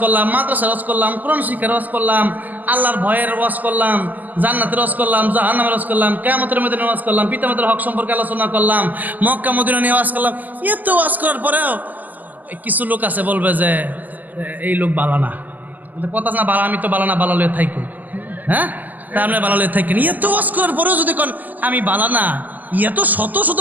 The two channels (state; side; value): late; left; 0.082 ms